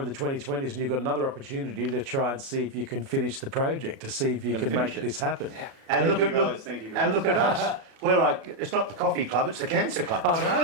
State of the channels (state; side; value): late; left; 37 ms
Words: the 2020s, and you've got another opportunity to try and see if you can finish the project, to see if you can make this happen. Yeah. And Thank look you at guys, thank you guys. And look at us. We're like, it's not the coffee club, it's the cancer club. I